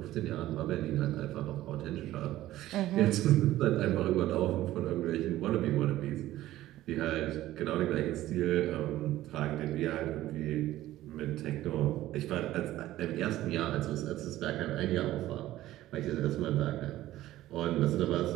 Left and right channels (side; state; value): left; quieter; 14.9 dB